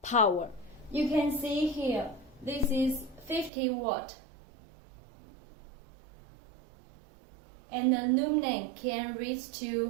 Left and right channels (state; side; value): drops out; left; at 3.5 s